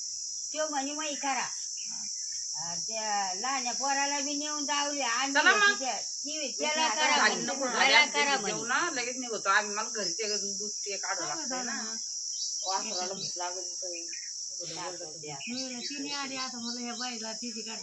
तो म्हणे मग करा त्या लहान्या पोराला बी नेऊन जावली आणि त्याला करा लगेच निघतो आम्ही मला घरचे दूध ते काढू लागतं ना वासराला भूक लागत तिने आली आता मला ह्या बाईला तिची गाठ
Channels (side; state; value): both; normal; correlation 0.96